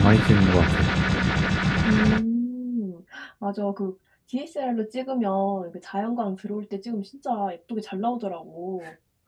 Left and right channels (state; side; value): identical; both; correlation 1.00